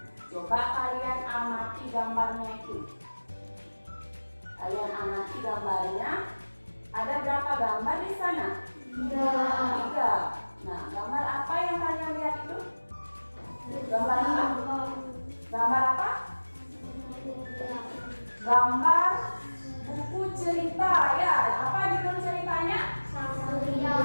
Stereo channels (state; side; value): inverted; both; correlation -1.00